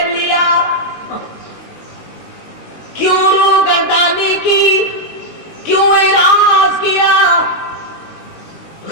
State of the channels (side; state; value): right; late; 19 ms